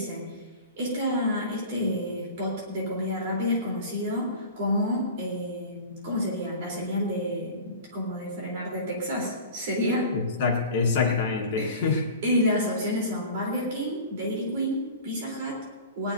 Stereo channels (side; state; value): both; inverted; correlation -0.37